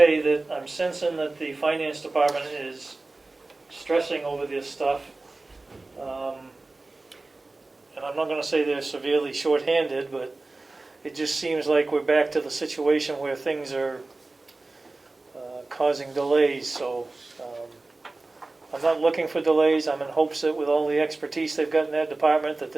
that I'm sensing that the finance department is stressing over this stuff. And I'm not gonna say they're severely shorthanded, but it just seems like we're back to the situation where things are causing delays, so I'm not looking for delays. I'm in hopes that with all the expertise they've got in that department, that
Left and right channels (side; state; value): left; quieter; 3.2 dB